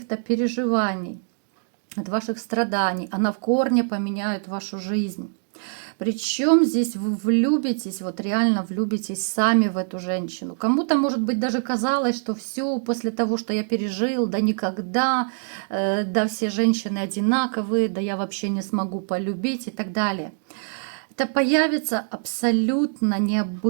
переживаний, от ваших страданий. Она в корне поменяет вашу жизнь. Причем здесь вы влюбитесь, вот реально влюбитесь сами в эту женщину. Кому-то, может быть, даже казалось, что все после того, что я пережил, да никогда, да все женщины одинаковые, да я вообще не смогу полюбить и так далее. Это появится абсолютно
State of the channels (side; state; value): left; silent; digital silence